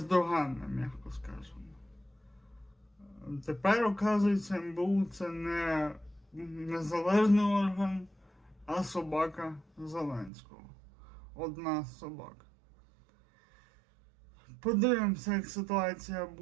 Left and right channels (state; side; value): drops out; left; at 10.3 s